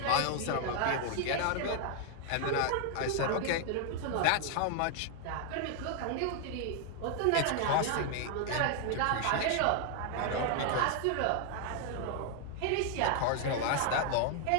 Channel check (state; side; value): different; both; correlation 0.00